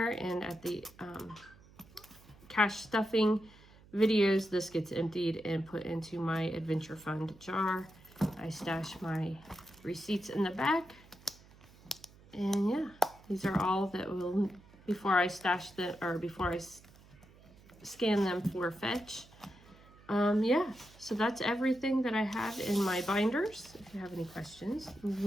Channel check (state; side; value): noise; right; hum, 24 dB below the sound